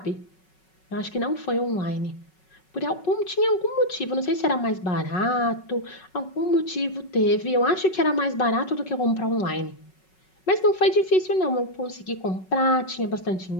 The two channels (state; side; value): late; right; 5.4 ms